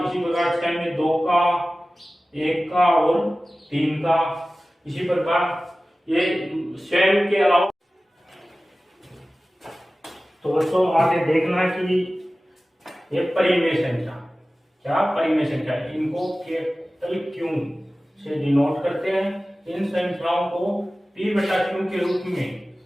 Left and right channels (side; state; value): both; normal; correlation 0.96